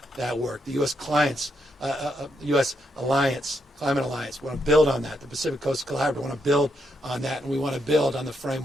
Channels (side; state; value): both; normal; correlation 0.79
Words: that work. The U.S. U.S. Alliance, Climate Alliance, we want to build on that. The Pacific Coast Collaborative, we want to build on that, and we want to build on the